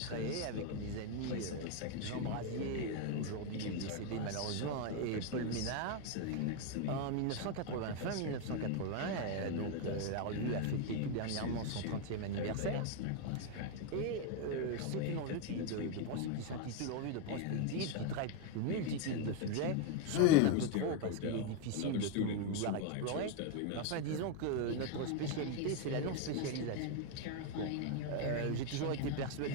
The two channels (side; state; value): both; different; correlation 0.01